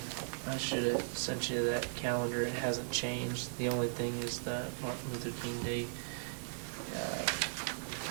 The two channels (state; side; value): silent; left; digital silence